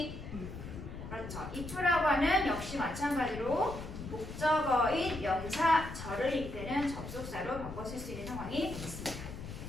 그렇죠. if라고 하는 역시 마찬가지로 목적어인 명사절을 이끄는 접속사로 바꿔 쓸 수 있는 상황이 있습니다.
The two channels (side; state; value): left; noise; rumble, 10 dB below the sound